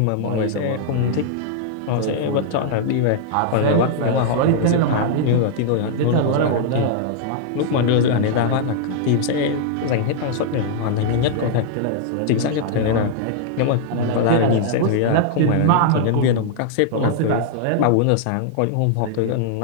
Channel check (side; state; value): both; different; correlation -0.01